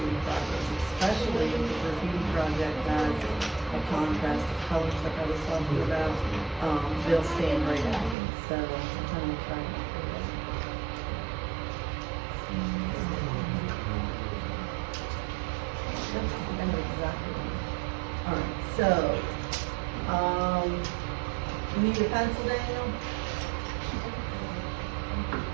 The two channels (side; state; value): left; drops out; at 8.2 s